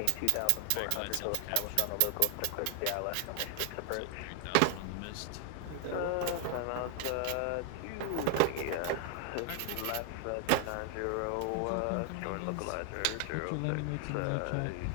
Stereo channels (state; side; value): different; both; correlation 0.00